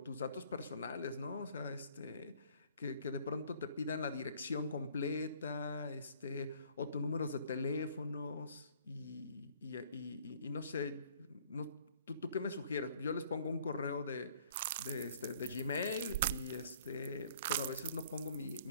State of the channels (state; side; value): inverted; both; correlation -0.57